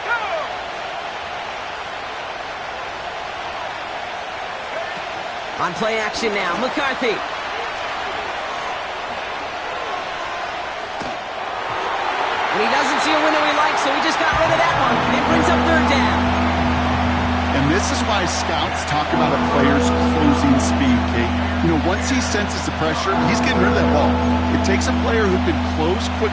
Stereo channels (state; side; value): identical; both; correlation 1.00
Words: On play action now, McCarthy. And he doesn't see a window he likes, so he just got rid of that one. It brings up third down. And this is why scouts talk about a player's closing speed, Kate. Once he senses the pressure, he's getting rid of that ball. It takes a player who can close